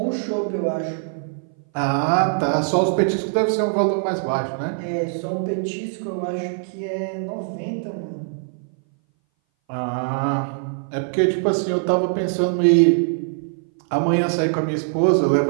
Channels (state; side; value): silent; left; 60 dB below the other